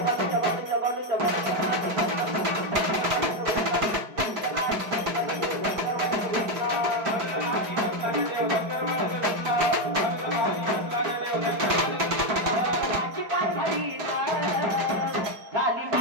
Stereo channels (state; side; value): late; left; 4.8 ms